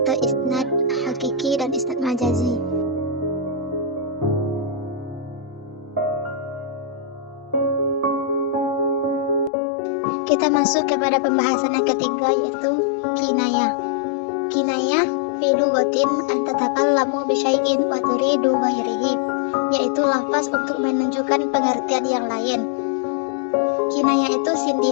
isnad hakiki dan isnad majazi. Kita masuk kepada pembahasan yang ketiga, yaitu kinayah. Kinayah fi lugatin an tatakallamu bi syai'in wa turidu ghairihi, yaitu lafaz untuk menunjukkan pengertian yang lain. Kinayah itu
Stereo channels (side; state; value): right; drops out; at 9.5 s